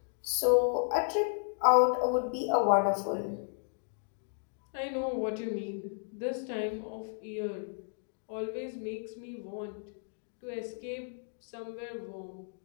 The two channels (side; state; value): right; silent; digital silence